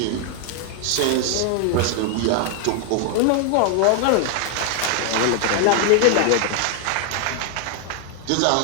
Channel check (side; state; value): both; different; correlation 0.00